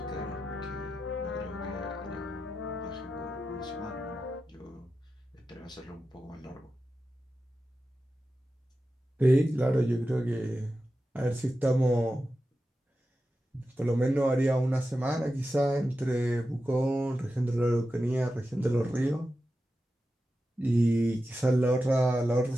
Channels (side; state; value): both; normal; correlation 0.91